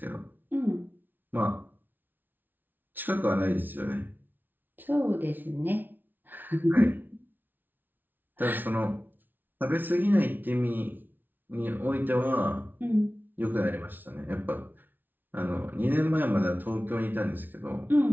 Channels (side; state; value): left; late; 0.089 ms